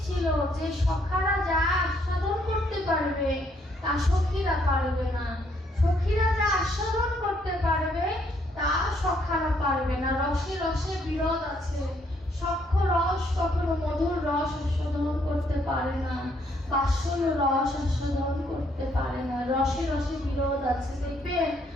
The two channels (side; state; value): both; normal; correlation 0.70